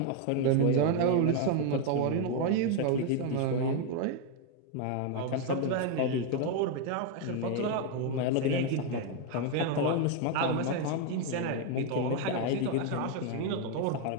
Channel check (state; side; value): different; both; correlation 0.01